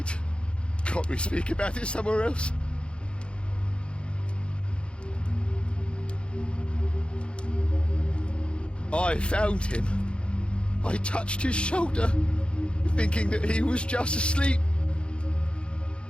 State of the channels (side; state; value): right; late; 0.056 ms